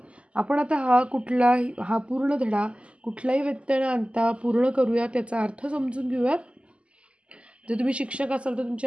आपण आता हा पूर्ण धडा कुठलाही व्यत्यय न आणता पूर्ण करूया, त्याचा अर्थ समजून घेऊयात. जर तुम्ही शिक्षक असाल तर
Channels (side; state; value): left; late; 0.056 ms